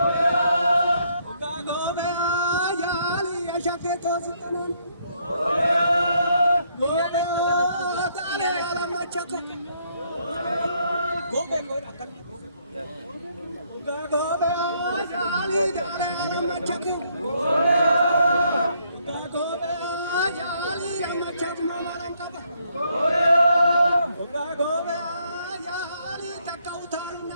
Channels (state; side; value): inverted; both; correlation -0.71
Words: Uga gobe ayali ashake to sutanan. Gobe dale ala machatu. Gobe koi akal. Uga gobe ayali dale ala machatu. Uga gobe ayali ala machatu mamaram kaba. Uga gobe ayali takautar